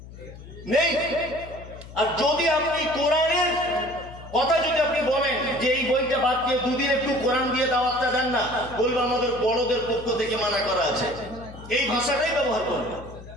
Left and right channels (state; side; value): noise; left; hum, 16 dB below the sound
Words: নেই। আর যদি আপনি কোরআনের কথা যদি আপনি বলেন যে এই বইটা বাদ দিয়ে দুদিন একটু কোরআন দিয়ে দাওয়াতটা দেন না, বলবো আমাদের বড়দের পক্ষ থেকে মানা করা আছে। এই ভাষাটাই ব্যবহার করবে,